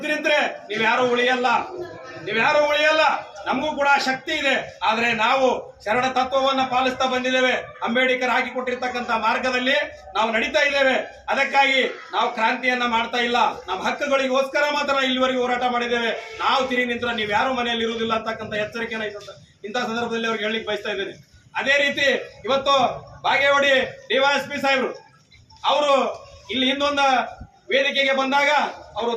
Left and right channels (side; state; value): both; identical; correlation 1.00